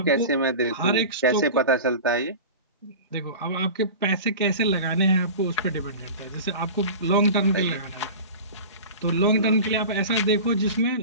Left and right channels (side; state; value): both; inverted; correlation -0.33